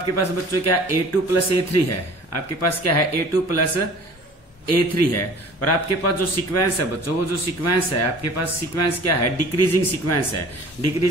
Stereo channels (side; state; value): both; normal; correlation 0.47